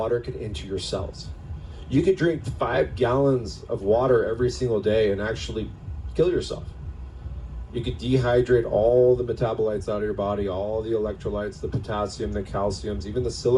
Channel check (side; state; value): both; identical; correlation 1.00